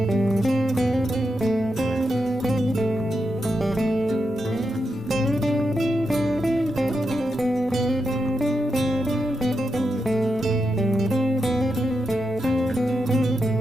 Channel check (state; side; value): normal; both; correlation 0.86